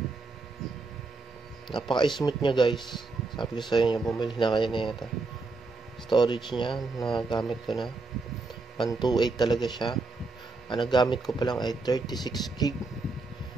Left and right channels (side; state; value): left; quieter; 3.6 dB